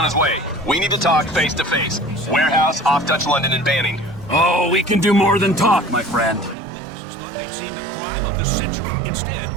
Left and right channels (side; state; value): left; drops out; at 6.6 s